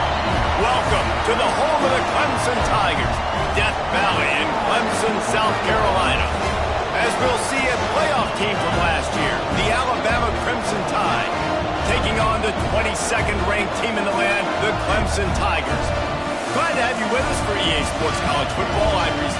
Welcome to the home of the Clemson Tigers, Death Valley in Clemson, South Carolina. As we'll see a playoff team from last year, the Alabama Crimson Tide, taking on the 22nd ranked team in the land, the Clemson Tigers. Glad to have you with us for EA Sports College Football. I'm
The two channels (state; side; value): identical; both; correlation 1.00